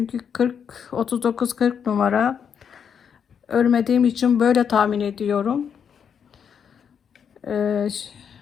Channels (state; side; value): quieter; right; 7.5 dB